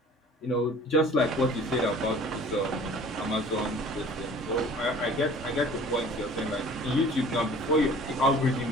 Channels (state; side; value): normal; both; correlation 0.47